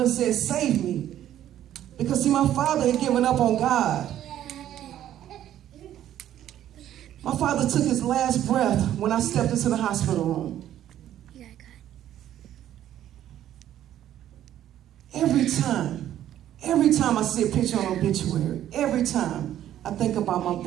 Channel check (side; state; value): left; quieter; 11.7 dB